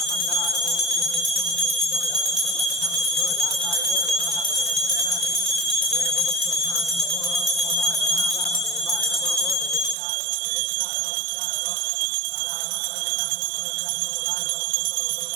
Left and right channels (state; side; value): drops out; left; at 10.0 s